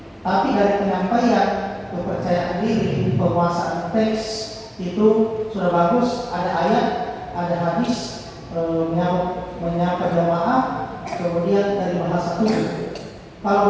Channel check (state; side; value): identical; both; correlation 1.00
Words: Tapi dari penyampaian, kepercayaan diri, penguasaan teks itu sudah bagus. Ada ayat, ada hadis, menyapa jamaah, kemudian dari bahasa tubuh.